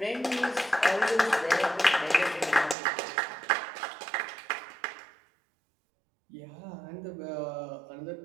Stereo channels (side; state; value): left; drops out; at 2.8 s